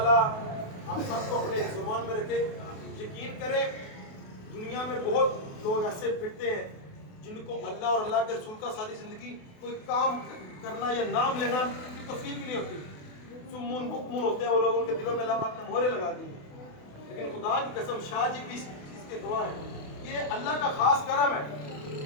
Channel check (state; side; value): late; right; 28 ms